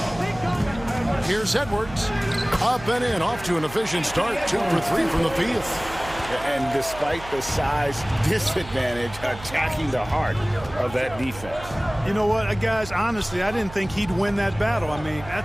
Here's Edwards. Up and in, off to an efficient start. 2 for 3 from the field. And despite the size disadvantage, attacking the heart of that defense. You know what, guys, honestly, I didn't think he'd win that battle. I mean,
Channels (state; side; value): noise; right; hum, 15 dB below the sound